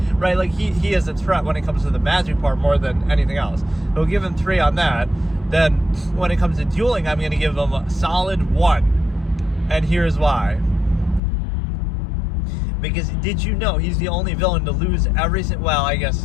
right? Like he is a threat when it comes to the magic part more than anything else. We'll give him 3 on that. Then when it comes to dueling, I'm going to give him a solid 1, and here's why. Because did you know he's the only villain to lose every single, well, I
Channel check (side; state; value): right; drops out; at 11.2 s